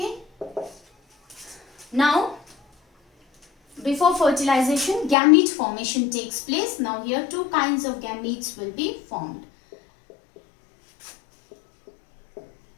Now, before fertilization, gamete formation takes place. Now here two kinds of gametes will be formed.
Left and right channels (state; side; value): drops out; right; at 5.2 s